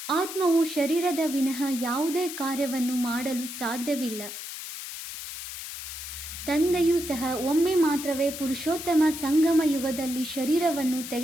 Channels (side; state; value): left; noise; hiss, 9 dB below the sound